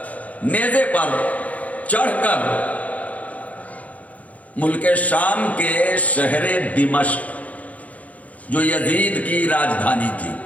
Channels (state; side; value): late; right; 0.070 ms